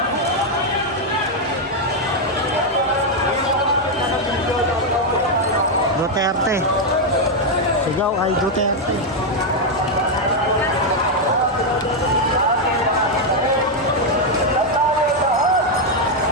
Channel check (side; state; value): both; normal; correlation 0.01